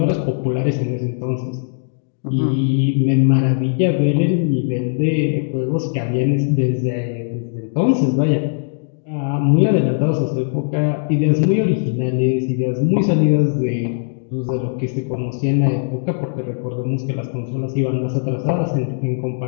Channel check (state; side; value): silent; right; digital silence